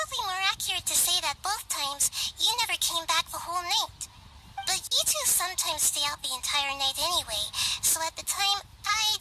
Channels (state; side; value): identical; both; correlation 1.00